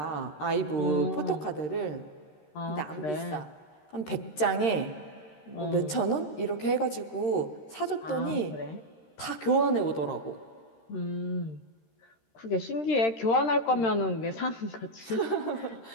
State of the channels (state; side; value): late; right; 13 ms